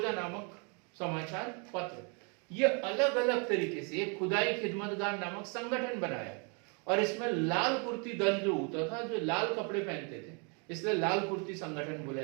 नामक समाचार पत्र, ये अलग अलग तरीके से एक खुदाई खिदमतगार नामक संगठन बनाया। और इसमें लाल कुर्ती दल जो होता था, जो लाल कपड़े पहनते थे, इसलिए लाल कुर्ती संगठन बोला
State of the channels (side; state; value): left; quieter; 34.9 dB